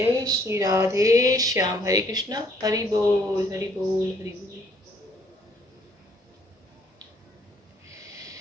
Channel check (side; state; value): both; normal; correlation 0.64